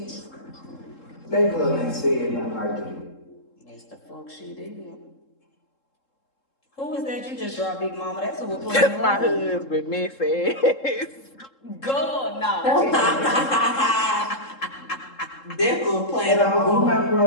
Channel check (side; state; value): right; late; 3.7 ms